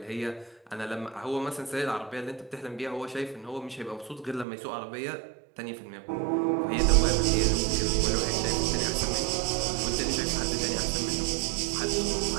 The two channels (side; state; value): left; drops out; at 4.5 s